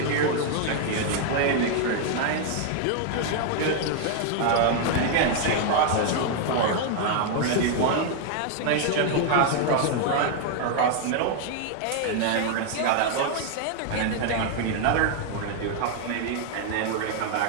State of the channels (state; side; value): different; both; correlation 0.00